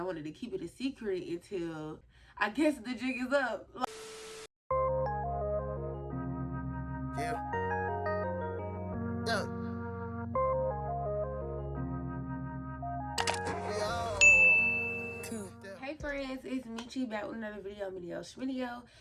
wanted to keep it a secret until I guess the jig is up. Yeah. Hey friends, it's Michi back with another video,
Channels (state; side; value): identical; both; correlation 1.00